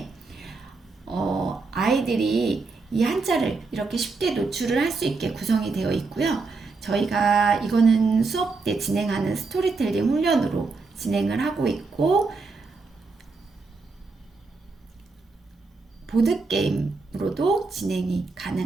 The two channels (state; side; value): quieter; left; 4.0 dB